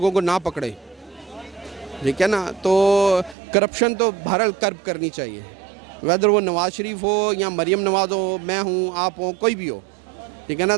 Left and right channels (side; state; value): left; drops out; at 3.4 s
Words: को ना पकड़े, ठीक है ना। तो करप्शन तो बहरहाल कर्ब करनी चाहिए, वेदर वो नवाज़ शरीफ हो या मरीम नवाज़ हो, मैं हूँ, आप हो, कोई भी हो, ठीक है ना।